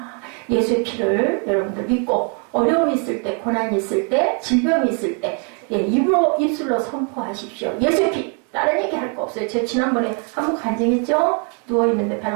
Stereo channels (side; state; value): left; quieter; 38.7 dB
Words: 예수의 피를 여러분들 믿고 어려움이 있을 때, 고난이 있을 때, 질병이 있을 때 입술로 선포하십시오. 예수의 피! 다른 얘기 할 거 없어요. 제가 지난번에 한번 간증했죠? 누워있는데